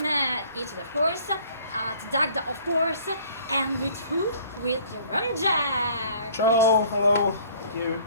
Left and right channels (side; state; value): both; inverted; correlation -0.54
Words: Italy, of course, at Dagda, of course, and with who? With the Rumjacks. Ciao, hello, thank you.